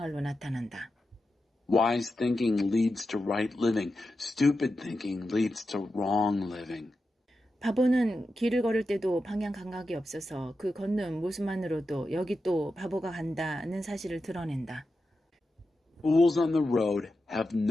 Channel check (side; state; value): both; normal; correlation 0.90